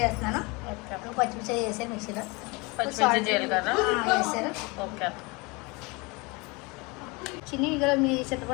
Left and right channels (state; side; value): quieter; right; 26.8 dB